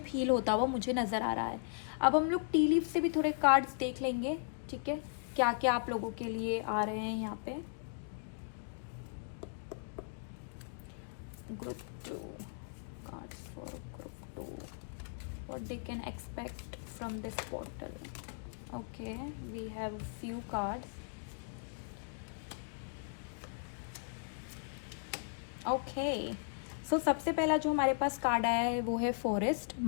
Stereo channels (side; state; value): right; silent; digital silence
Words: हील होता हुआ मुझे नज़र आ रहा है। अब हम लोग टी लीफ से भी थोड़े कार्ड्स देख लेंगे। ठीक है, क्या क्या आप लोगों के लिए आ रहे हैं यहाँ पे। Group 2 cards for group 2, what they can expect from this portal. Okay, we have few cards. Okay, so सबसे पहला जो हमारे पास कार्ड आया है वो है फॉरेस्ट,